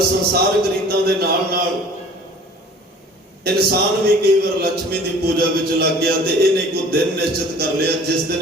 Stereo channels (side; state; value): both; normal; correlation 0.48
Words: संसारक रीतां दे नाल नाल इंसान भी कई बार लक्ष्मी की पूजा विच लग गया। तो इन्हें को दिन निश्चित कर लिया जिस